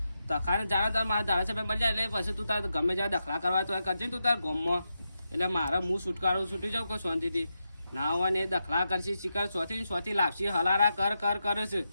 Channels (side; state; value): both; inverted; correlation -0.87